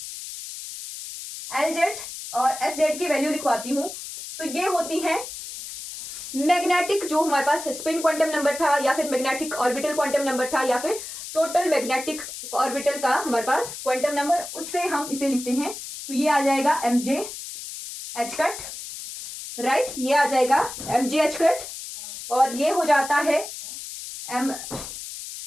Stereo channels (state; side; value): noise; left; hiss, 10 dB below the sound